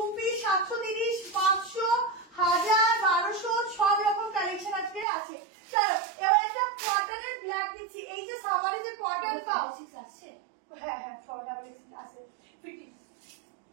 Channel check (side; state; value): left; drops out; at 5.1 s